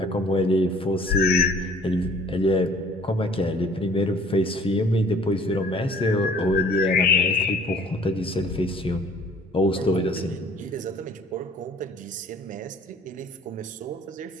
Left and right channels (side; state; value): both; normal; correlation 0.53